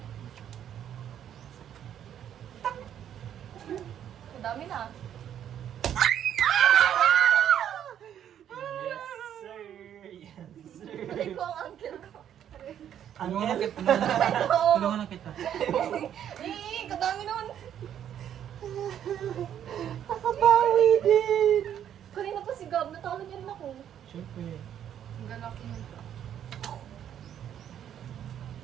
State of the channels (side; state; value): left; quieter; 9.9 dB